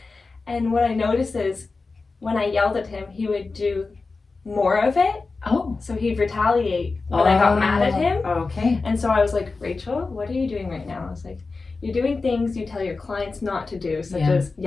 And what I noticed is when I yelled at him, he would do more of it. Oh. So he'd retaliate when I got mad at him. Okay. And so I was like, Rachel, what are you doing right now? I was like, you're doing things you tell your clients not to do, such Yeah. as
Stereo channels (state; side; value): quieter; right; 4.0 dB